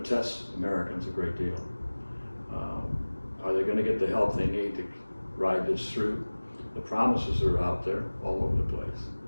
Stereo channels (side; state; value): both; inverted; correlation -1.00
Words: test Americans a great deal. Are they going to get the help they need to ride this through? The promises are out there all over the place.